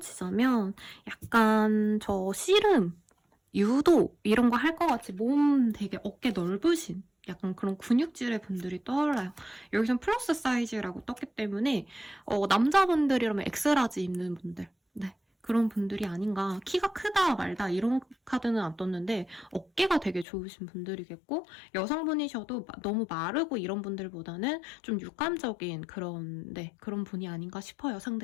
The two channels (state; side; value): drops out; right; at 20.2 s